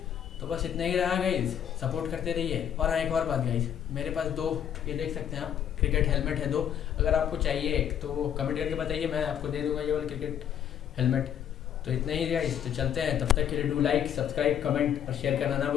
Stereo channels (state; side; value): quieter; right; 9.4 dB